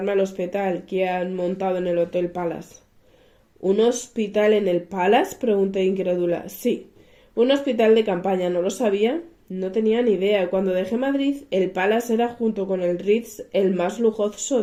al hospital que han montado en el Hotel Palace. ¿Un hospital en el Palace?, pregunté incrédula. Sí, un hospital de campaña. ¿No lo sabía? No tenía ni idea. Cuando dejé Madrid, el Palace era, junto con el Ritz, el más lujoso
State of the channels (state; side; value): identical; both; correlation 1.00